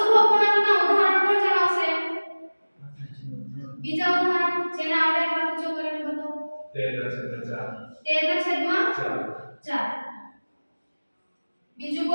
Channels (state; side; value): inverted; both; correlation -1.00